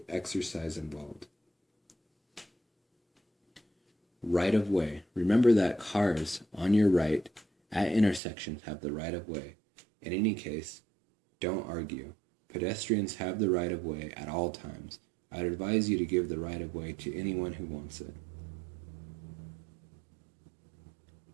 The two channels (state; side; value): drops out; left; at 8.2 s